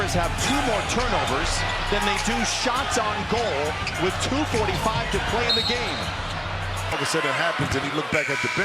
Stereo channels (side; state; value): both; identical; correlation 1.00